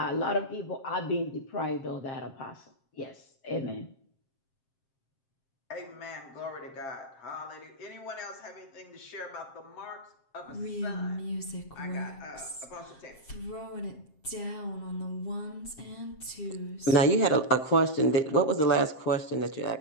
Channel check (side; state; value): right; late; 7.5 ms